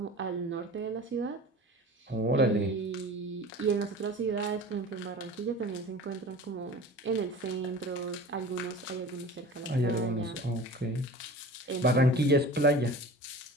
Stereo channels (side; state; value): both; normal; correlation 0.38